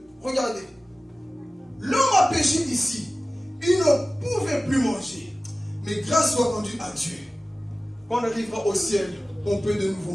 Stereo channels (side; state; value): both; normal; correlation 0.96